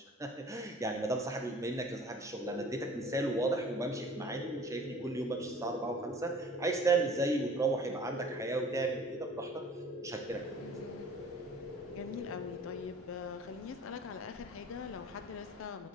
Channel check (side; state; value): both; normal; correlation 0.48